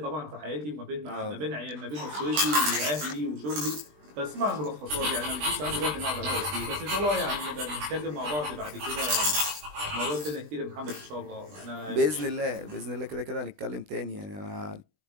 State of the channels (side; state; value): left; late; 20 ms